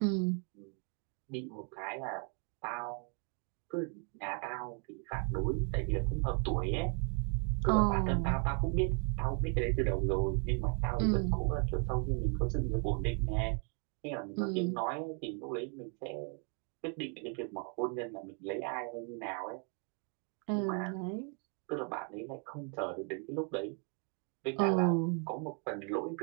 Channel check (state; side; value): quieter; left; 39.9 dB